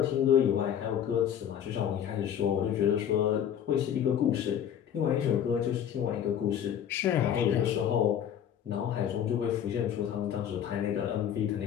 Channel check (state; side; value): quieter; right; 9.4 dB